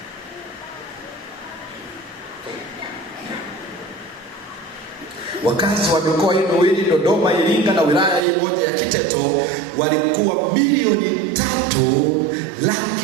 wakazi wa mikoa hii miwili, Dodoma, Iringa na wilaya hii moja ya Kiteto, walikuwa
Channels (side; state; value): left; drops out; at 8.2 s